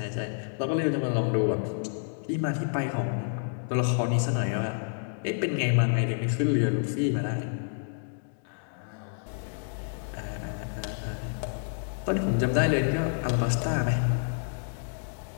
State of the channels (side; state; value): right; silent; digital silence